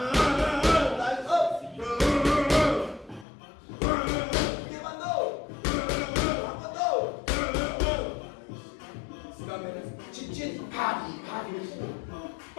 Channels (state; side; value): drops out; right; at 3.2 s